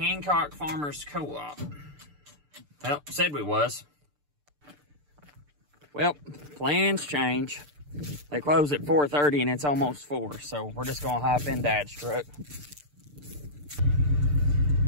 Farmers Co-op. Well, said we was. Well, plans change. They close at 4:30 and it's almost 4, so we're just gonna hop in Dad's truck.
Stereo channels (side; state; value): left; late; 6.8 ms